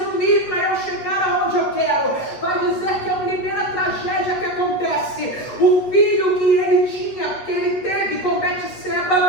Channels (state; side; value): late; right; 8.3 ms